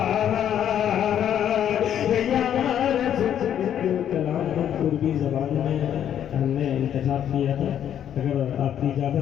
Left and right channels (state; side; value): quieter; right; 9.9 dB